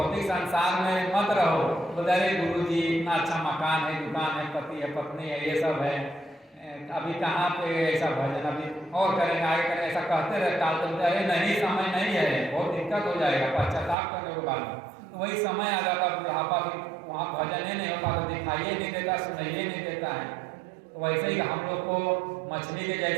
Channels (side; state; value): left; drops out; at 14.0 s